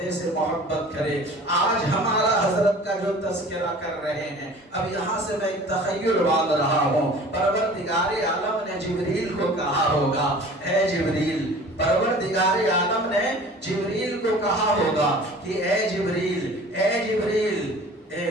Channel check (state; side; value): normal; both; correlation 0.44